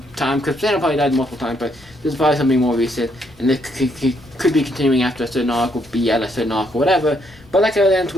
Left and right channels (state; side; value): noise; left; rumble, 25 dB below the sound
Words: time, because Thanos probably died multiple times, but this is probably something more recent, and it could be continuing after a certain arc, or be at a certain arc, or whatever. But like it ends